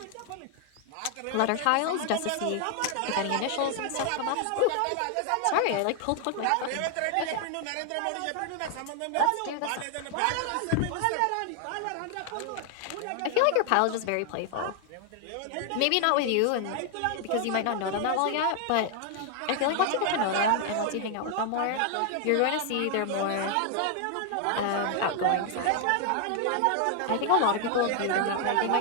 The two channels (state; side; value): different; both; correlation 0.00